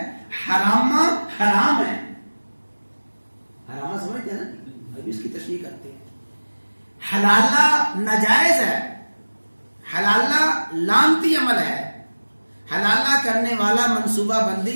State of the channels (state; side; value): inverted; both; correlation -1.00